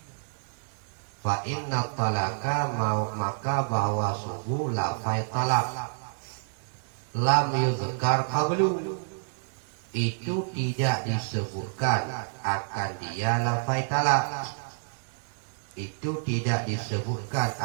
Fa inna talaqa, maka bahwa sungguh lafai talaq lam yuzkar qablu, itu tidak disebutkan akan dia lafai talaq. Itu tidak disebutkan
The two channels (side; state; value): left; silent; digital silence